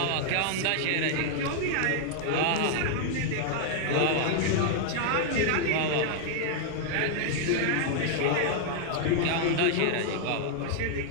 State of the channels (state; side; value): different; both; correlation -0.01